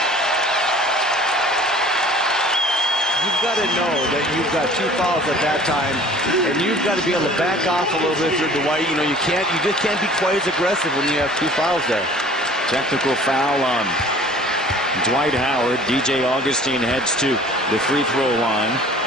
You've got to know that you've got 2 fouls at that time, and you've got to be able to back off a little bit for Dwight. You know, you just can't be quite as aggressive when you have 2 fouls there. Technical foul on Dwight Howard. DJ Augustine heads to the free throw line.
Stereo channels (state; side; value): normal; both; correlation 0.49